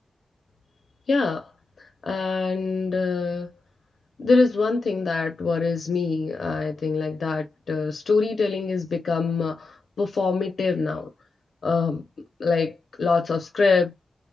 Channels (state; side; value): quieter; right; 3.8 dB